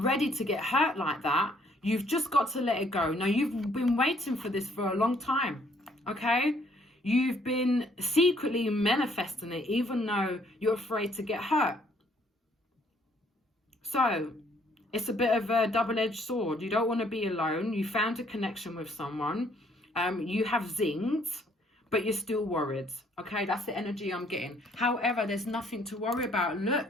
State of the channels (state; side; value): normal; both; correlation 0.65